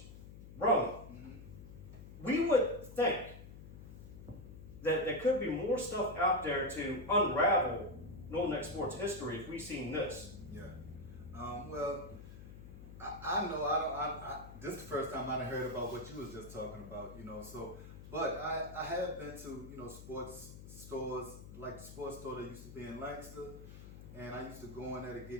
Roane, we would think that there could be more stuff out there to unravel Northern Neck sports history if we seen this. Yeah. Well, I know this is the first time I heard about what you was just talking about, so, but I have been to, sports stores, like the sports store that used to be in Lancaster, and I used to go in there to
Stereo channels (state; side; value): noise; left; hum, 14 dB below the sound